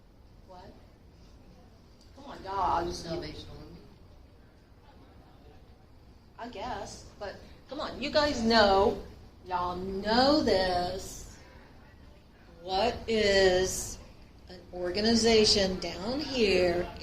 What? Come on, dogs. Salvation Army. I guess, but come on, you guys know, y'all know this. What is an organization down here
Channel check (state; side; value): identical; both; correlation 1.00